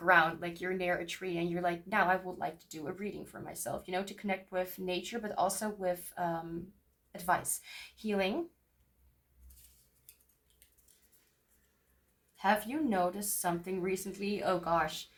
like you're near a tree and you're like, now I would like to do a reading for myself, you know, to connect with nature but also with advice. Healing. Have you noticed something recently? Oh gosh,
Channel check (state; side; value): identical; both; correlation 1.00